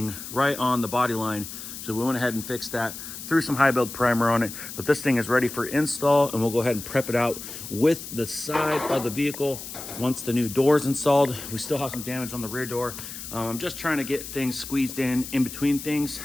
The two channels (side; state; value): left; noise; hiss, 10 dB below the sound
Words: right on the body line. So we went ahead and fixed that, threw some high build primer on it, but this thing is ready for install, and we'll go ahead and prep it out with the side of the vehicle once the new door is installed. We still have some damage on the rear door. I'm just trying to get things squeezed in between things.